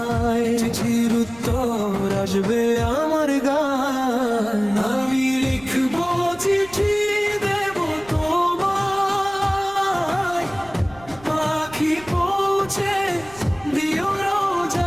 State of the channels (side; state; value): right; noise; rumble, 22 dB below the sound